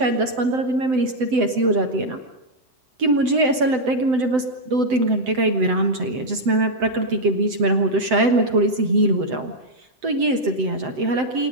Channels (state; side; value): late; left; 7.8 ms